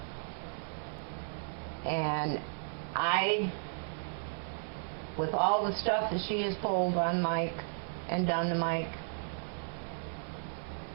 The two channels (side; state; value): left; silent; digital silence